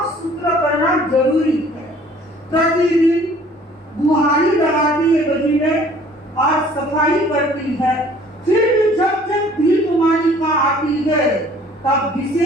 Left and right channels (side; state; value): both; normal; correlation 0.53